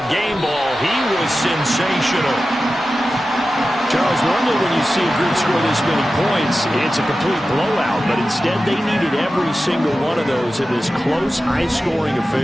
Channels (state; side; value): normal; both; correlation 0.94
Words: game ball. He was sensational. Charles, normally when you see a group score this many points, it's a complete blowout, but instead they needed every single one of those in this close, high-scoring